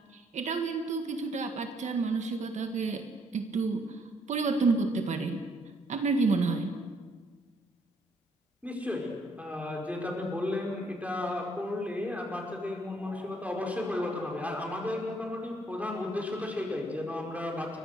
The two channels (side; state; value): both; normal; correlation 0.69